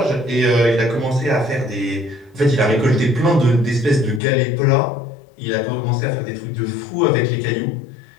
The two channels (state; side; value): drops out; right; at 4.2 s